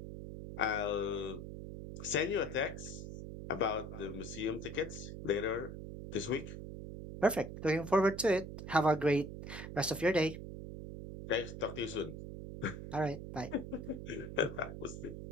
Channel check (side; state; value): right; noise; hum, 9 dB below the sound